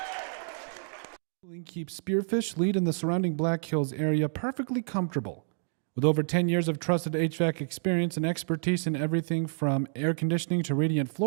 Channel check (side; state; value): left; silent; digital silence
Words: Keeps Spearfish lead in the surrounding Black Hills area perfectly comfortable. With over 10 years of trusted HVAC experience and expertise in everything from air conditioning to radiant